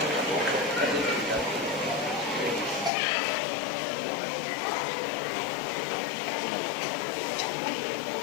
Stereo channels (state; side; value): drops out; right; at 2.9 s